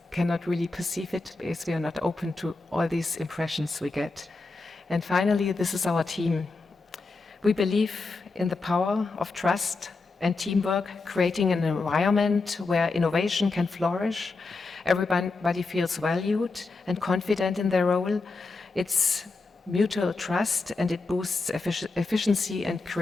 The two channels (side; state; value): right; quieter; 3.8 dB